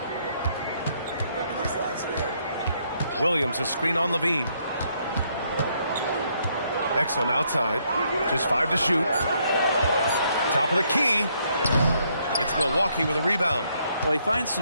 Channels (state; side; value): inverted; both; correlation -0.72